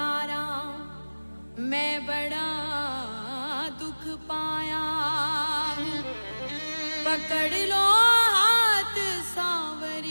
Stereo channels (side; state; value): both; inverted; correlation -1.00